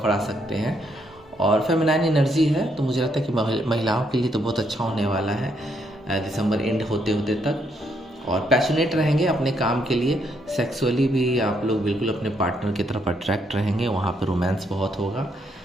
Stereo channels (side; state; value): both; normal; correlation 0.74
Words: आ सकते हैं। और फेमिनाइन एनर्जी है, तो मुझे लगता है कि महिलाओं के लिए तो बहुत अच्छा होने वाला है दिसंबर एंड होते होते तक। और पैशनेट रहेंगे अपने काम के लिए, सेक्सुअली भी आप लोग बिल्कुल अपने पार्टनर की तरफ अट्रैक्ट रहेंगे, वहाँ पर रोमांस बहुत होगा,